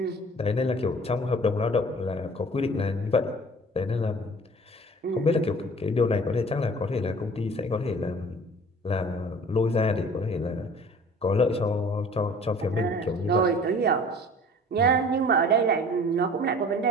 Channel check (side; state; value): both; normal; correlation 0.47